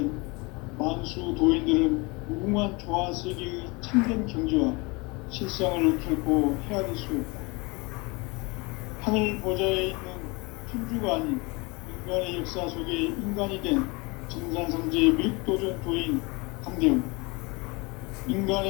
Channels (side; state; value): right; quieter; 27.1 dB